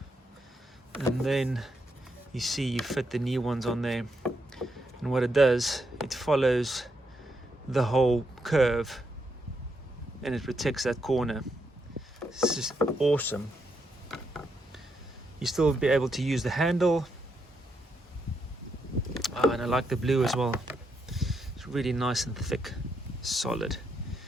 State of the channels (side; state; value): both; normal; correlation 0.80